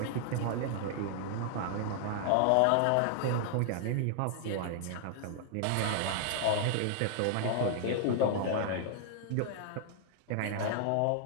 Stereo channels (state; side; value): different; both; correlation 0.00